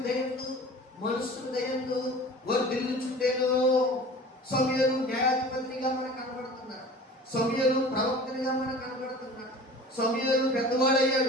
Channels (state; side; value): normal; both; correlation 0.41